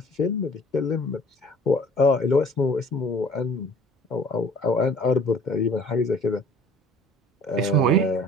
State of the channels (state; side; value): normal; both; correlation 0.50